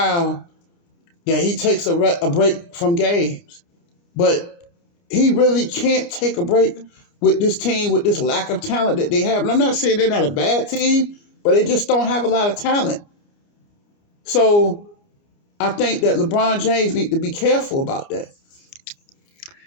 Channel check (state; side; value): late; right; 29 ms